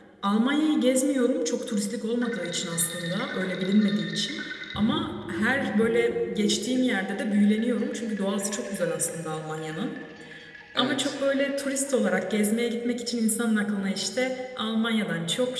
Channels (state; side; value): identical; both; correlation 1.00